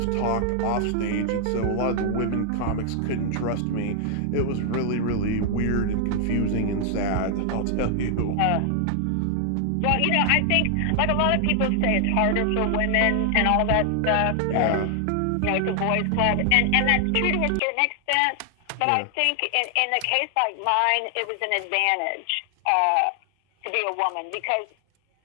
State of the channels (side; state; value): both; different; correlation 0.00